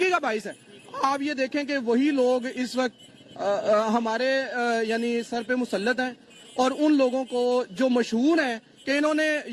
کا باعث ہے. آپ یہ دیکھیں کہ وہی لوگ اس وقت ہمارے یعنی سر پہ مسلط ہیں, اور ان لوگوں کو جو مشہور ہیں کہ انہوں نے,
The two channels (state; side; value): identical; both; correlation 1.00